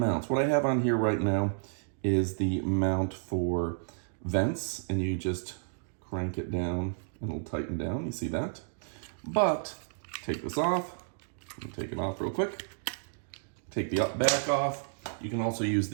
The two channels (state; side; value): silent; left; digital silence